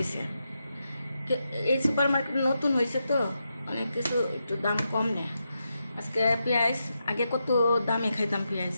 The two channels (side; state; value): both; inverted; correlation -0.86